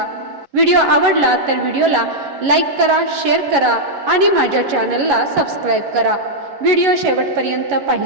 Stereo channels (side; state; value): left; late; 11 ms